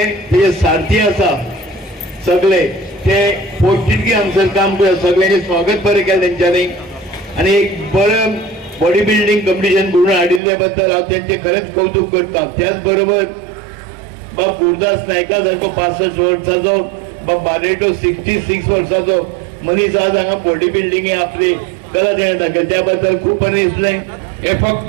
ते सारथी आसा, सगळे ते पोस्टिटकी हांगसर काम करता, सगळ्यांनी स्वागत बरें केलें तेंच्यांनी आणि एक बरें बॉडी बिल्डिंग कॉम्पिटिशन घडोवन हाडिल्ल्या बद्दल हांव तेंचें खरेंच कौतुक करता। त्याच बरोबर बाब गुरदास नायका सारको 65 वर्साचो, बाब बारेटो 66 वर्साचो मनीस आज हांगा बॉडी बिल्डिंगे आपली कला तेणें दाखयली, त्या बद्दल खूब बरें दिसलें। हे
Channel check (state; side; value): drops out; left; at 10.4 s